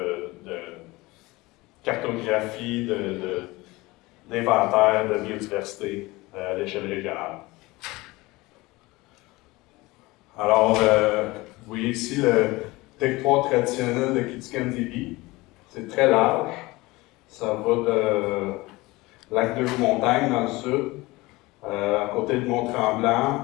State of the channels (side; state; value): right; quieter; 21.4 dB